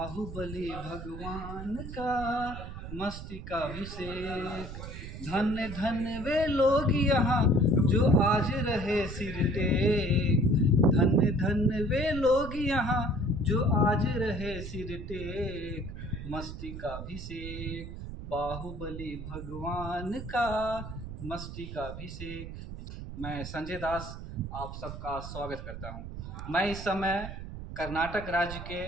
भगवान का मस्तकाभिषेक। धन्य धन्य वे लोग यहाँ जो आज रहे सिर टेक, धन्य धन्य वे लोग यहाँ जो आज रहे सिर टेक। मस्तकाभिषेक, बाहुबली भगवान का मस्तकाभिषेक। मैं संजय दास आप सबका स्वागत करता हूं। मैं इस समय कर्नाटक राज्य के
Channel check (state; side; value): noise; right; rumble, 9 dB below the sound